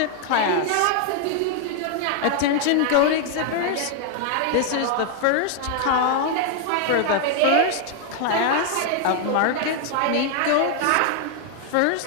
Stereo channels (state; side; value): different; both; correlation 0.00